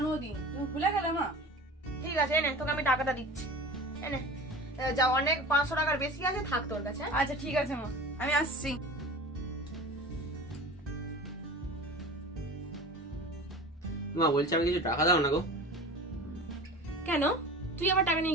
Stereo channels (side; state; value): both; normal; correlation 0.36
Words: তুমি ভুলে গেলে মা? ঠিক আছে এনে, তোকে আমি টাকাটা দিচ্ছি। এনে যা, অনেক 500 টাকার বেশি আছে, থাক তোর কাছে। আচ্ছা ঠিক আছে মা, আমি আসছি। মা বলছি আমি কিছু টাকা দাও না গো। কেন, তুই আবার টাকা